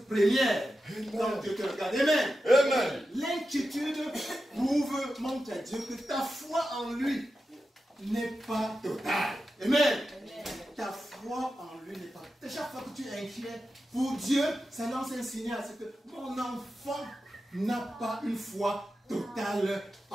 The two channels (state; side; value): normal; both; correlation 0.91